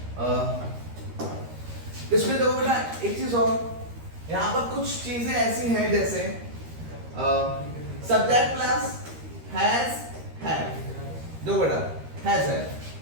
इसमें देखो बेटा एक चीज और, यहाँ पर कुछ चीजें ऐसी हैं जैसे सब्जेक्ट प्लस हैज हैव, दो बेटा हैज है,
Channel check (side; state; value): left; late; 13 ms